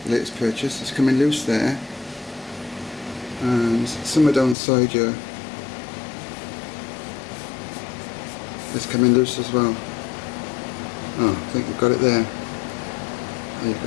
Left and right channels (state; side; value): drops out; right; at 4.5 s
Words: Latest purchase. It's coming loose there, and somewhere down the side here it's coming loose as well. Oh, I think we've got it there. There you